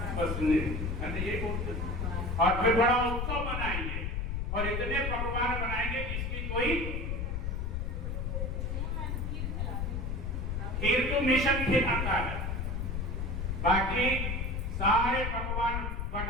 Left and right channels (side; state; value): left; noise; rumble, 1 dB below the sound